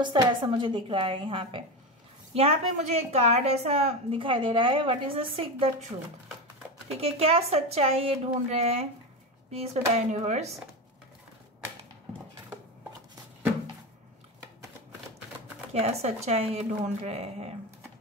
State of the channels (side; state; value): both; normal; correlation 0.19